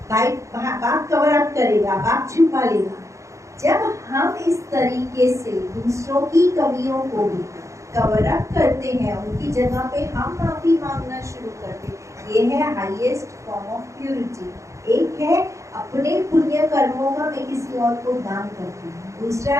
भाई बाप कवर अप करेगा, बाप छुपा लेगा। जब हम इस तरीके से दूसरों की कमियों को भी कवर अप करते हैं, उनकी जगह पे हम माफी मांगना शुरू करते हैं, ये है हाईएस्ट फॉर्म ऑफ प्यूरिटी। एक है अपने पुण्य कर्मों का मैं किसी और को दान करती हूँ, दूसरा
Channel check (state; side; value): late; left; 0.15 ms